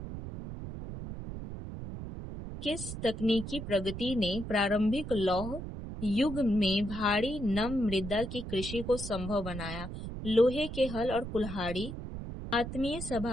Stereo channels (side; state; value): right; noise; rumble, 8 dB below the sound